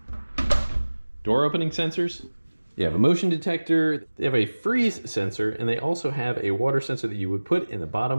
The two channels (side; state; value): both; inverted; correlation -1.00